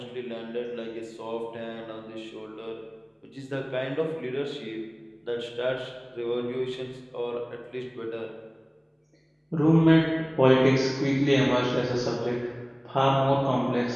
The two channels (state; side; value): identical; both; correlation 1.00